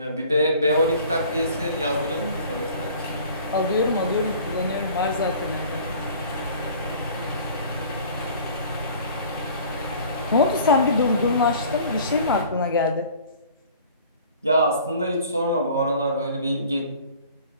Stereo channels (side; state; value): both; inverted; correlation -0.48